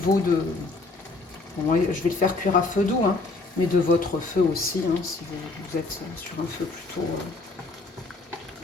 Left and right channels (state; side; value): quieter; right; 3.4 dB